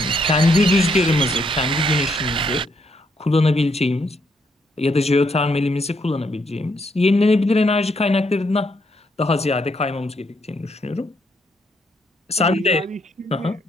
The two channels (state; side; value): normal; both; correlation 0.74